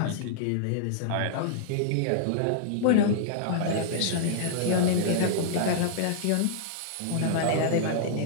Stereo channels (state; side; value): different; both; correlation -0.01